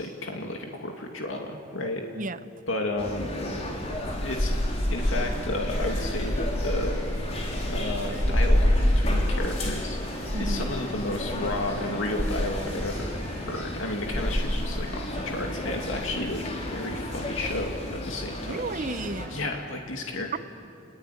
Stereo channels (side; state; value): both; normal; correlation 0.62